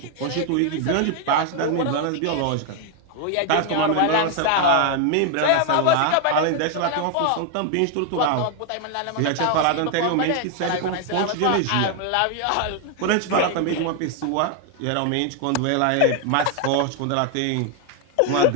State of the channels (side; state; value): both; different; correlation 0.00